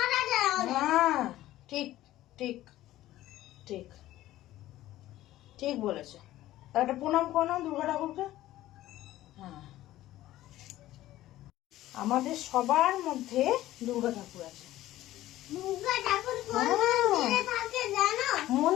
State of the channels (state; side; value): quieter; right; 15.0 dB